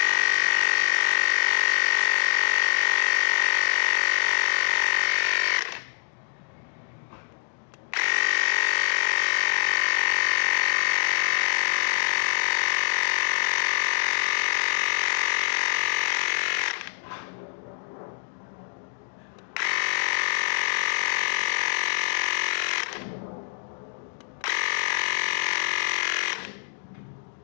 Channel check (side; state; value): right; silent; 62 dB below the other